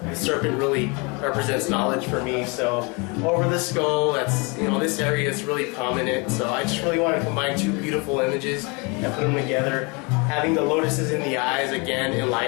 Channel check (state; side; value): quieter; right; 30.0 dB